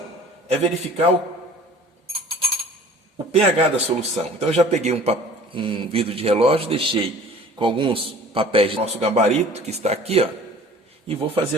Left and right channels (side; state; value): both; normal; correlation 0.47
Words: é verificar o pH da solução. Então eu já peguei um vidro de relógio, deixei com alguns papéis do nosso gabarito, que está aqui, ó, e vou fazer